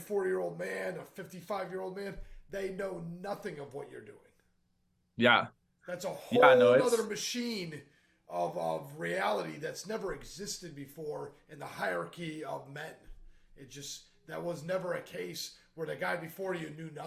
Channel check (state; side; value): identical; both; correlation 1.00